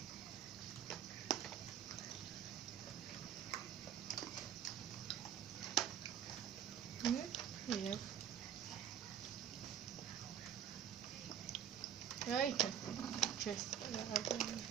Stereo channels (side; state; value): left; quieter; 9.4 dB